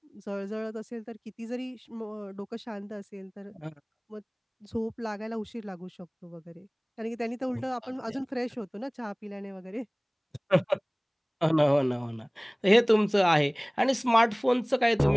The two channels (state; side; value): identical; both; correlation 1.00